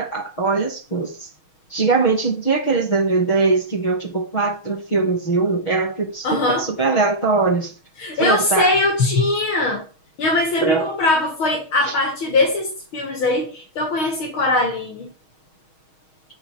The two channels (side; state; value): right; late; 6.3 ms